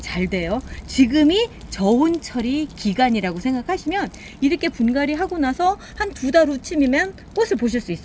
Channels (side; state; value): both; identical; correlation 1.00